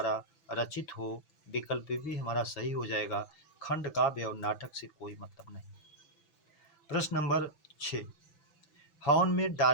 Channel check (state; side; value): late; right; 6.0 ms